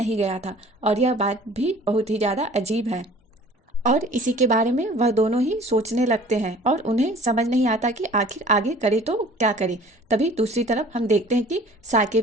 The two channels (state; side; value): normal; both; correlation 0.48